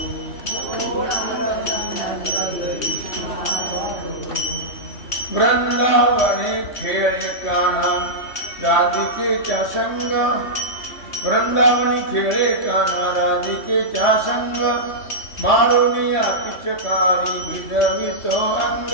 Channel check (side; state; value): right; late; 3.2 ms